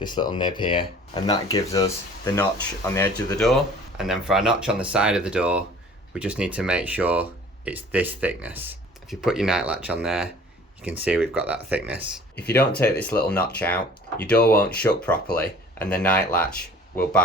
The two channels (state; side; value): normal; both; correlation 0.49